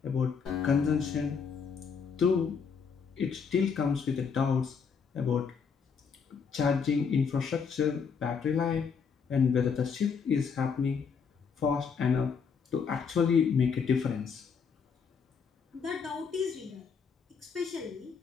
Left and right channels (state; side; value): quieter; right; 6.1 dB